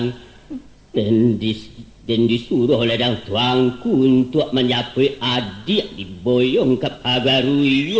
dan disuruh oleh dang tuangku untuk menyapai adik diboyong ke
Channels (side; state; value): both; identical; correlation 1.00